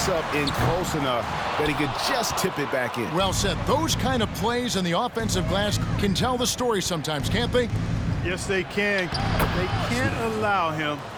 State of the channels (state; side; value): identical; both; correlation 1.00